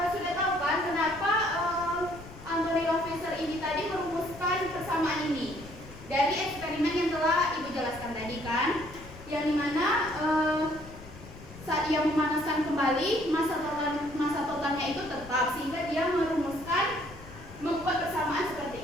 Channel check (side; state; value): left; noise; rumble, 17 dB below the sound